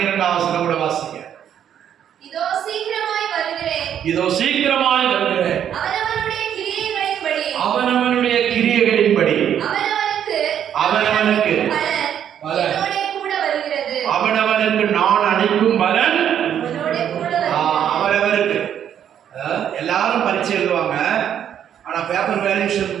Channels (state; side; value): quieter; left; 9.5 dB